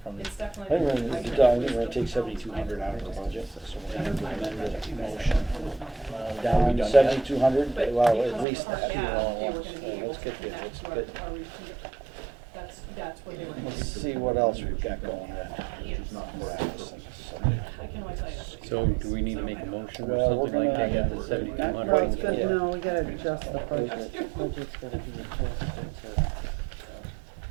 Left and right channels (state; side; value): drops out; left; at 8.5 s